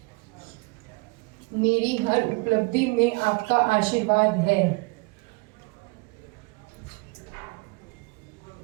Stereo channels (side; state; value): left; quieter; 28.3 dB